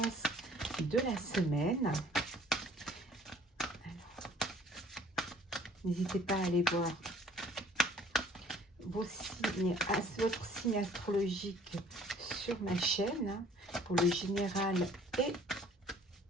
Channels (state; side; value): normal; both; correlation 0.54